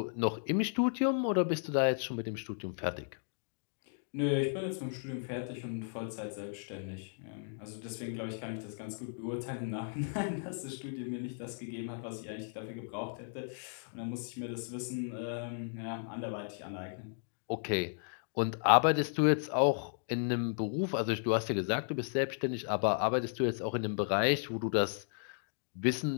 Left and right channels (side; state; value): right; silent; digital silence